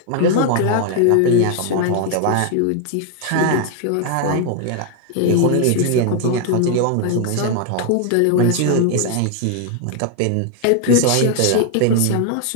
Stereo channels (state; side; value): different; both; correlation 0.00